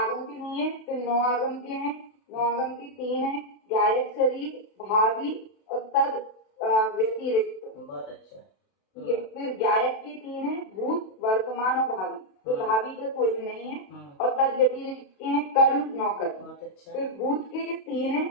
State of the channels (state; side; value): late; right; 32 ms